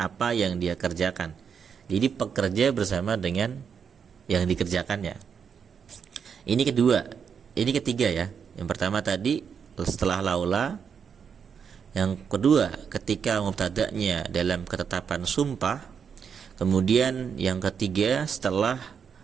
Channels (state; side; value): quieter; left; 6.9 dB